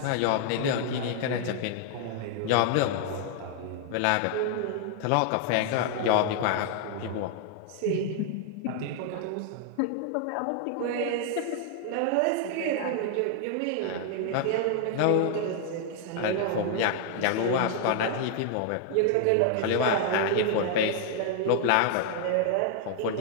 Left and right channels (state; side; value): different; both; correlation 0.00